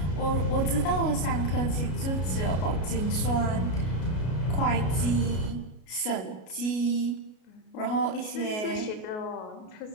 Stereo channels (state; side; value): late; right; 33 ms